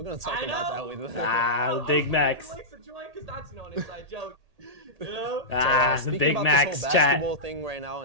gonna talk I about know. that with Ah, Big Macs. Likes to join because that's an inside joke. You know? Ah, the speaking Big about Macs this whole chat. basketball thing right now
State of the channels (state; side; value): late; left; 1.8 ms